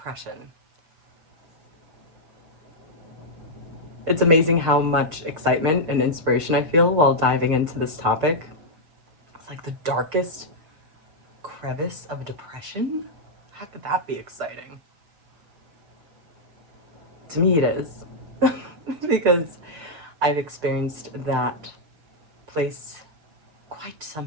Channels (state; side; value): late; left; 6.3 ms